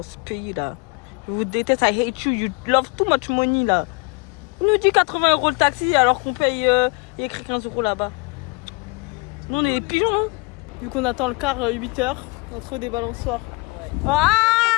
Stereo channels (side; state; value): right; quieter; 28.8 dB